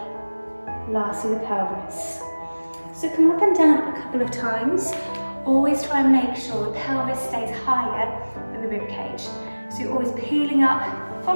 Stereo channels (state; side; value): inverted; both; correlation -1.00